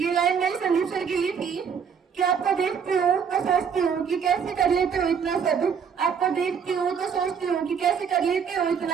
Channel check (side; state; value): left; quieter; 6.9 dB